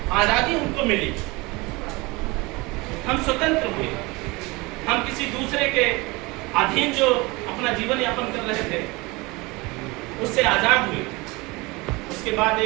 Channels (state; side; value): quieter; left; 24.2 dB